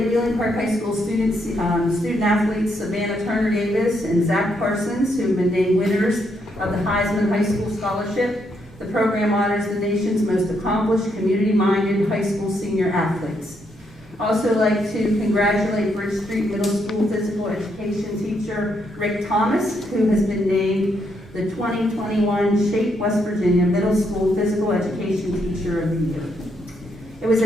Wheeling Park High School student athletes Savannah Turner Davis and Zach Parsons, who have been named winners of the Heisman High School Scholarship. The program honors the nation's most accomplished, community-minded high school senior athletes. Also like to congratulate Bridge Street Middle School physical education teacher Rick Thomas, who has been named the 2021 Shape West Virginia Middle School Physical Education Teacher of the Year. It was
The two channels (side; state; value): both; normal; correlation 0.76